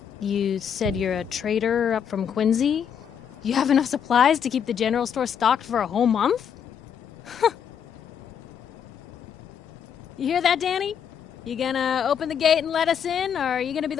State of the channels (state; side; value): quieter; right; 7.9 dB